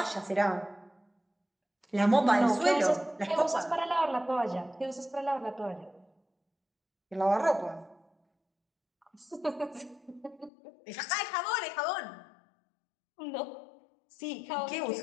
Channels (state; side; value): drops out; right; at 10.5 s